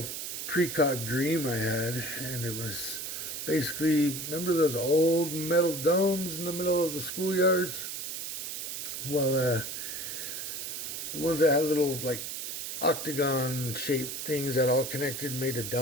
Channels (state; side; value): noise; right; hiss, 5 dB below the sound